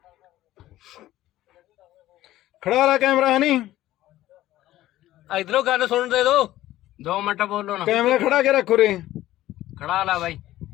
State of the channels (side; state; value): right; quieter; 14.8 dB